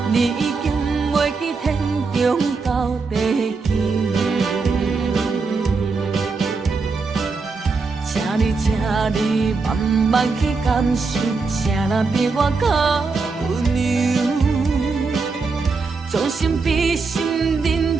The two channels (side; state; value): left; quieter; 4.4 dB